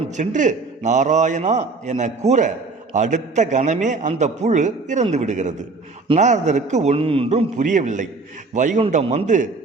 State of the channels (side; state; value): left; quieter; 3.9 dB